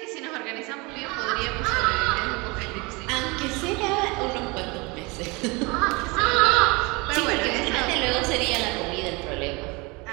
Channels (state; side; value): quieter; left; 26.5 dB